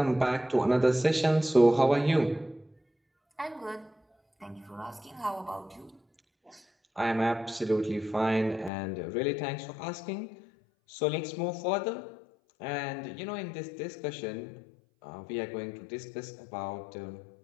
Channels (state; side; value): drops out; right; at 8.7 s